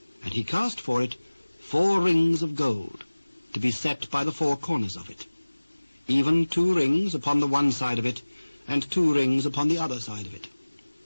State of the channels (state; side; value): inverted; both; correlation -1.00